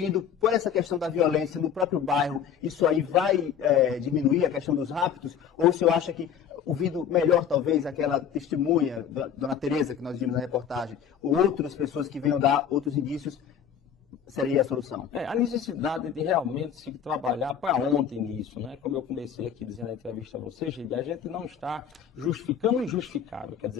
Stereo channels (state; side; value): quieter; right; 8.3 dB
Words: por essa questão da violência no próprio bairro, isso aí vai diminuir a questão dos raptos? Ou o senhor acha que, ouvindo melhor talvez aquela testemunha, Dona Tereza, que nós vimos na reportagem, ou outras pessoas que venham dar outros indícios, seria a solução? A necessidade de realmente se trabalhar para ontem nisso, né? Como eu comecei aqui dizendo na entrevista a você, Geide, a gente não está justificando o injustificável. Quer